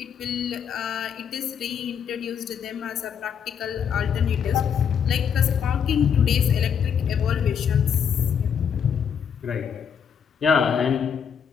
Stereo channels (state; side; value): quieter; right; 7.5 dB